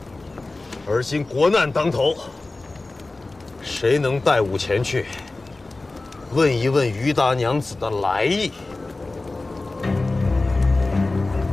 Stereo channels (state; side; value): quieter; right; 3.2 dB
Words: 而今国难当头，谁能带吾前去，问一问于大娘子的来意？